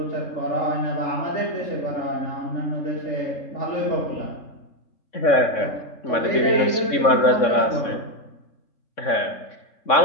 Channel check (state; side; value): late; right; 3.6 ms